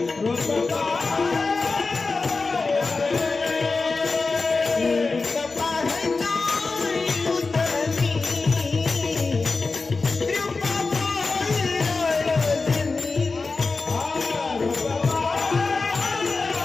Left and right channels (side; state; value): right; quieter; 4.0 dB